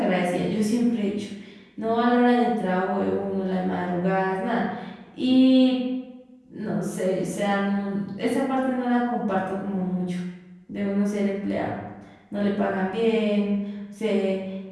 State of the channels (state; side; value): identical; both; correlation 1.00